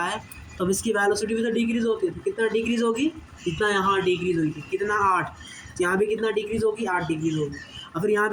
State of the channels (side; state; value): both; identical; correlation 1.00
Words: है, तो अब इसकी वेलोसिटी भी तो डिक्रीज़ होती है। तो कितना डिक्रीज़ होगी? जितना यहाँ डिक्रीज़ हुई थी, कितना 8। यहाँ भी कितना डिक्रीज़ होगी? 8 डिक्रीज़ होगी। और फिर यहाँ